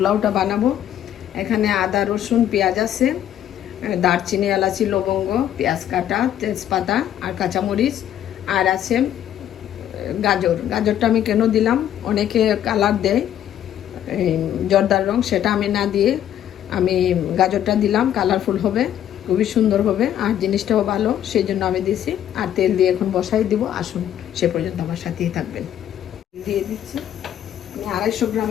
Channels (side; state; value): right; quieter; 10.9 dB